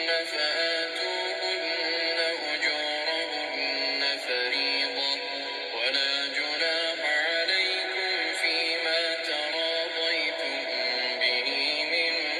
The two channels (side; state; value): both; identical; correlation 1.00